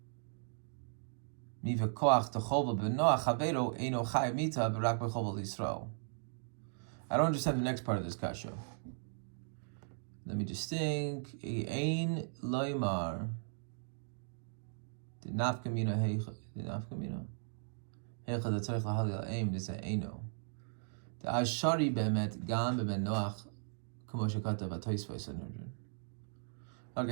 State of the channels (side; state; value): left; silent; digital silence